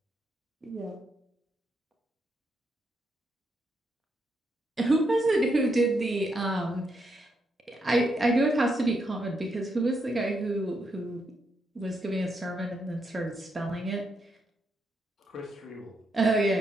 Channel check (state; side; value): normal; both; correlation 0.80